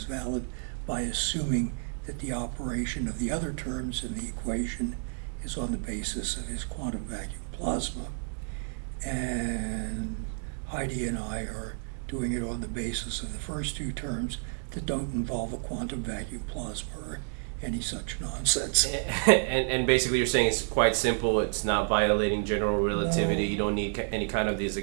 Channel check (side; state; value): left; silent; 58 dB below the other